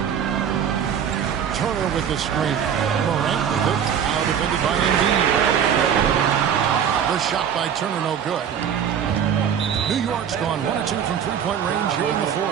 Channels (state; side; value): quieter; left; 8.3 dB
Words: Turner with the screen. Morant with it. Now defended by Embiid. The shot by Turner no good. New York's gone 1 of 2 from three-point range here in the